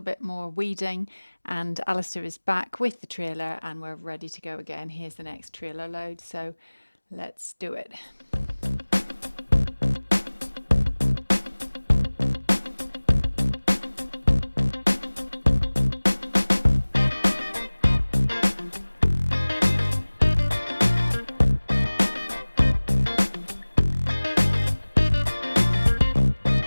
bit more weeding, and Alistair is back with the trailer and we're ready to go again. Here's the next trailer load, so let's do it.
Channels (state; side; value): inverted; both; correlation -1.00